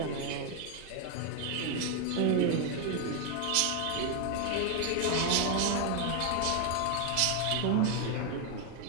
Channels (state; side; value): different; both; correlation 0.01